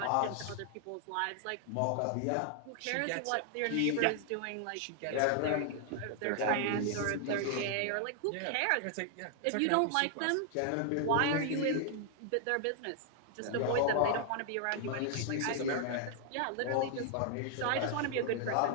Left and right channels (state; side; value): different; both; correlation 0.00